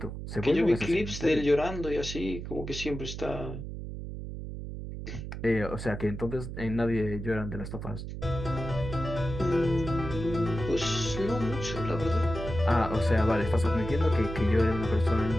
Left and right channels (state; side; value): noise; right; hum, 8 dB below the sound